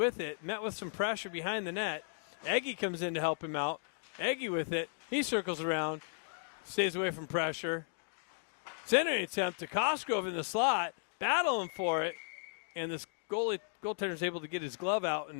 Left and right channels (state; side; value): silent; right; digital silence